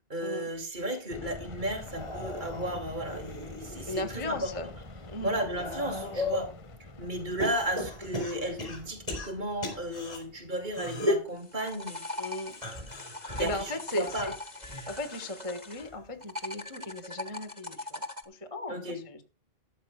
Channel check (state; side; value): late; left; 2.3 ms